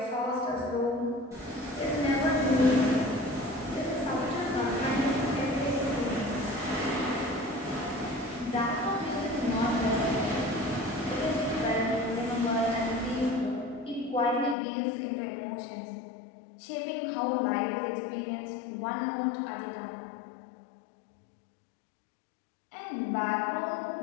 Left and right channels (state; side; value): drops out; right; at 14.6 s